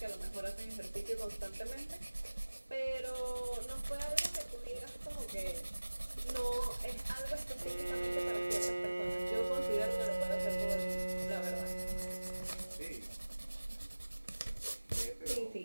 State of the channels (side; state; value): both; inverted; correlation -1.00